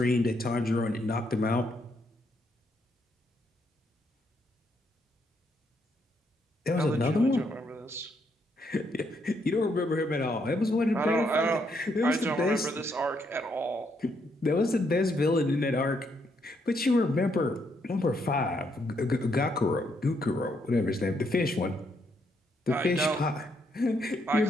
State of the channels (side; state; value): both; normal; correlation 0.75